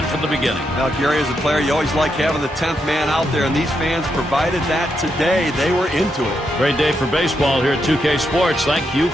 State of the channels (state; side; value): normal; both; correlation 0.82